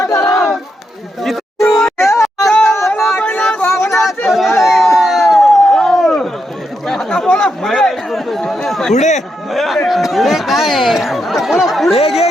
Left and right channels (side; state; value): both; normal; correlation 0.82